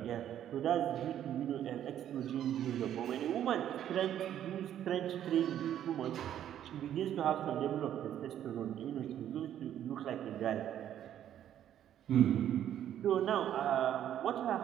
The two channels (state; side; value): quieter; left; 10.7 dB